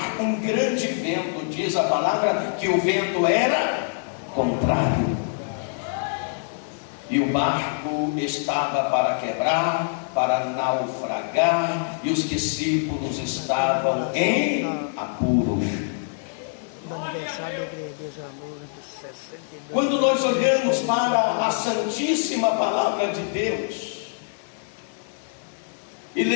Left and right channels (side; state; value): right; silent; digital silence